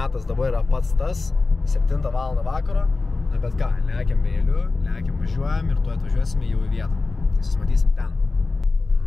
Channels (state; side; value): quieter; right; 3.7 dB